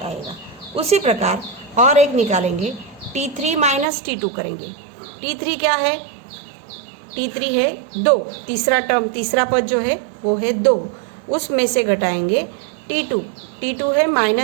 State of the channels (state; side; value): drops out; left; at 3.9 s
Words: आएगा। उसी प्रकार और एक निकालेंगे, T3 माइनस T2 करेंगे। T3 क्या है, T3 है 2, तीसरा पद जो है वो है 2, उसमें से घटाएंगे T2 है